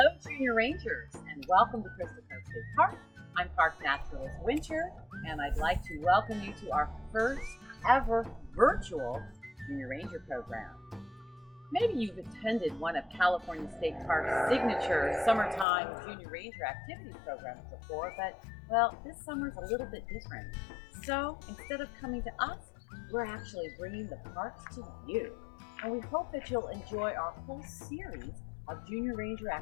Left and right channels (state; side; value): drops out; right; at 15.7 s